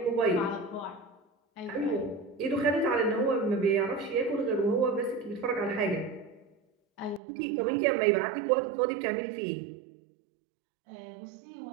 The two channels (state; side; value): drops out; left; at 7.2 s